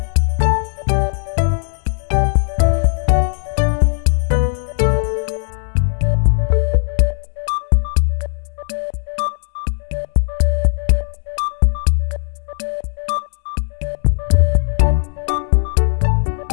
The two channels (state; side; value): silent; right; digital silence